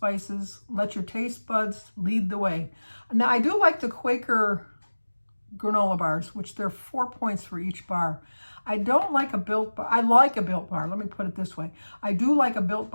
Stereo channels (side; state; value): both; inverted; correlation -1.00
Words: Let your taste buds lead the way. Now, I do like the Quaker granola bars, which they're 4 points for each bar. I don't like a Built bar. I like a Built bar. Let me put it this way. I do like a Built